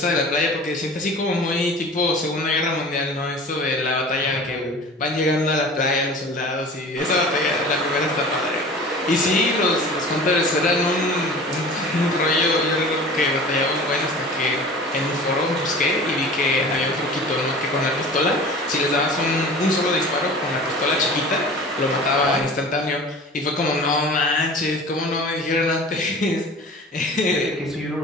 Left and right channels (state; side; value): normal; both; correlation 0.40